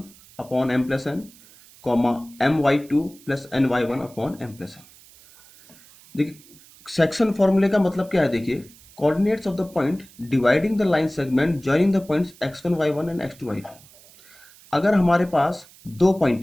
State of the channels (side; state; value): right; noise; hiss, 24 dB below the sound